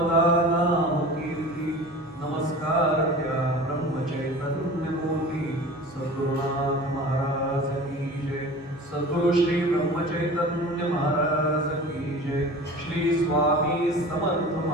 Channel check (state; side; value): normal; both; correlation 0.38